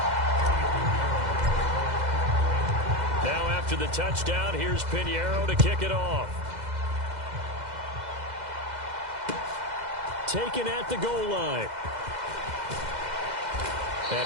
After the touchdown, here's Piñeiro to kick it off. Taken at the goal line.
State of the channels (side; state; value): left; late; 2.0 ms